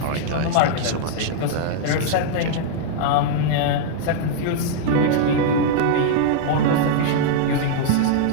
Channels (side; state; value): both; different; correlation -0.01